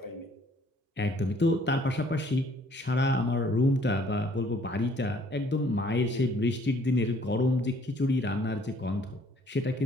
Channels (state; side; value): normal; both; correlation 0.61